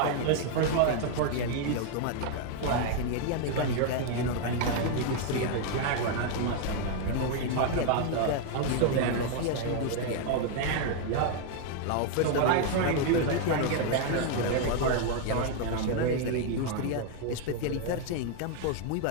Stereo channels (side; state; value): both; different; correlation 0.00